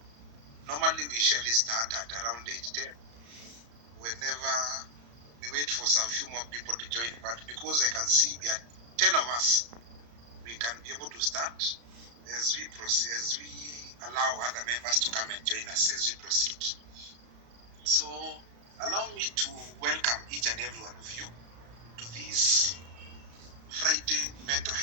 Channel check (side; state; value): left; late; 34 ms